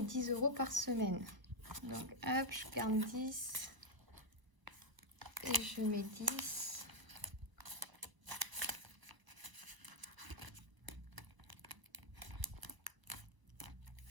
10 € par semaine. Donc hop, je garde 10. Et je mets 10.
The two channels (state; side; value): late; left; 1.0 ms